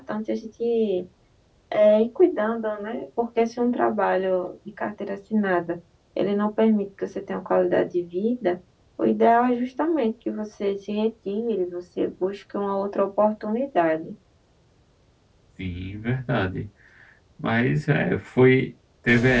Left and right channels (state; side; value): identical; both; correlation 1.00